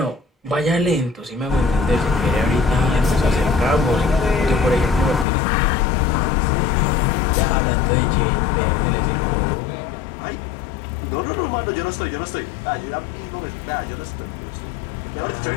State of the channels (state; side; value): drops out; right; at 5.2 s